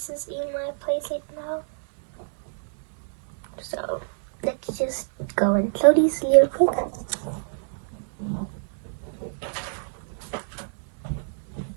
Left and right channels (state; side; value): silent; left; digital silence